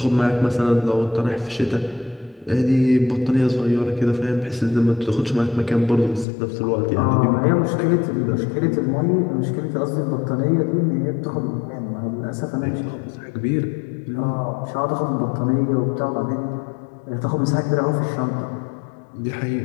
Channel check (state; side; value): drops out; right; at 6.2 s